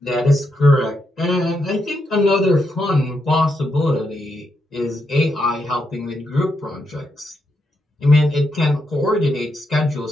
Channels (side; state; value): both; normal; correlation 0.82